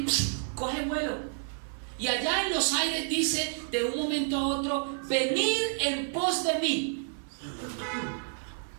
coge vuelo, y allá en los aires dice de un momento a otro: venid en pos de mí.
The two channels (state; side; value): silent; left; digital silence